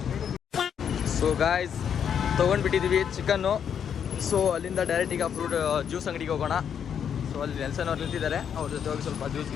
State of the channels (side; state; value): right; quieter; 8.1 dB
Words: ಸೊ ಗಾಯ್ಸ್ ತೊಗೊಂಡ್ಬಿಟ್ಟಿದ್ದೀವಿ ಚಿಕನ್ನು. ಸೊ ಅಲ್ಲಿಂದ ಡೈರೆಕ್ಟ್ ಈಗ ಫ್ರೂಟ್ ಜ್ಯೂಸ್ ಅಂಗಡಿಗೆ ಹೋಗೋಣ. ಸೊ ಅಲ್ಲಿ ನೆಲ್ಸನ್ ಅವ್ರು ನಿಂತಿದ್ದಾರೆ, ಅವ್ರ ಜೊತೆ ಹೋಗಿ ಸ್ವಲ್ಪ ಜ್ಯೂಸ್